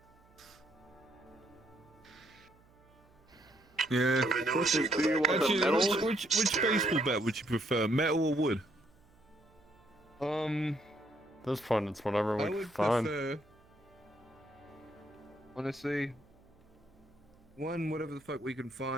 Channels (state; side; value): noise; right; hum, 29 dB below the sound